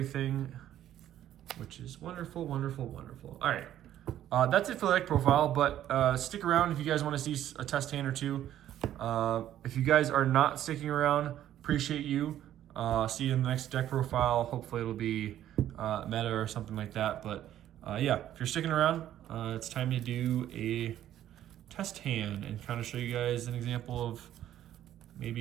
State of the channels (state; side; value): quieter; left; 11.9 dB